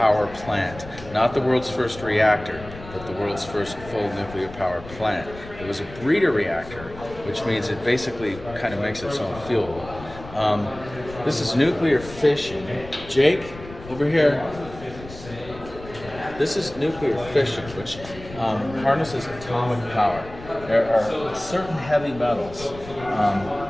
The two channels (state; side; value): noise; left; rumble, 15 dB below the sound